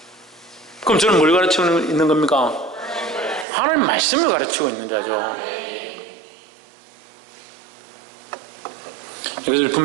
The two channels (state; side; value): drops out; left; at 3.5 s